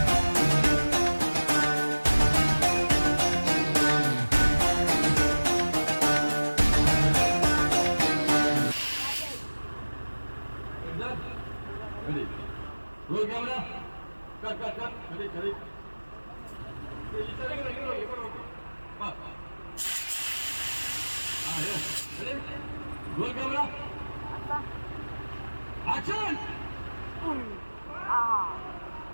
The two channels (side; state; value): both; inverted; correlation -1.00